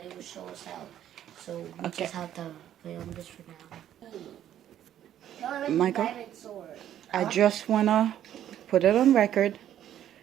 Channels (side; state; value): left; quieter; 11.1 dB